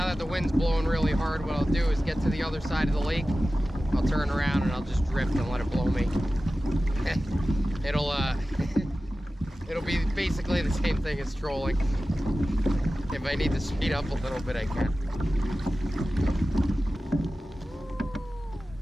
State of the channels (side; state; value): both; normal; correlation 0.95